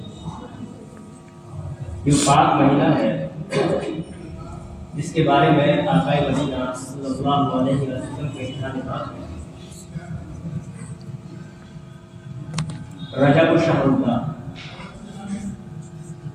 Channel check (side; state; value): both; identical; correlation 1.00